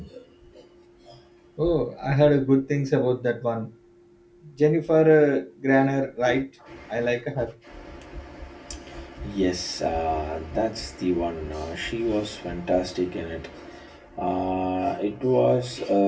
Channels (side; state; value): both; identical; correlation 1.00